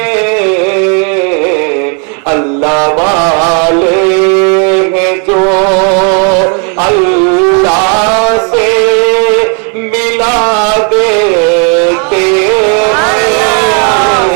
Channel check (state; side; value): quieter; left; 39.0 dB